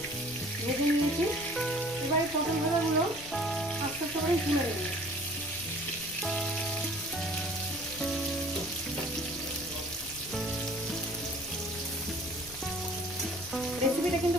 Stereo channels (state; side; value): noise; left; rumble, 18 dB below the sound